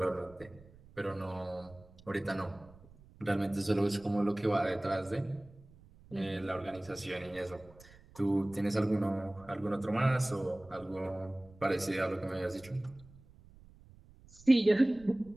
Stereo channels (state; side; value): noise; right; rumble, 23 dB below the sound